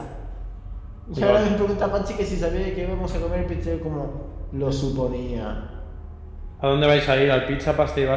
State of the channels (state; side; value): identical; both; correlation 1.00